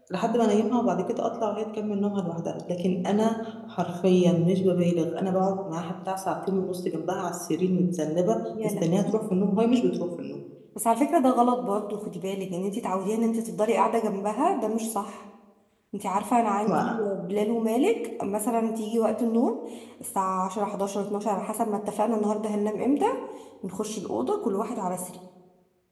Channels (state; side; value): identical; both; correlation 1.00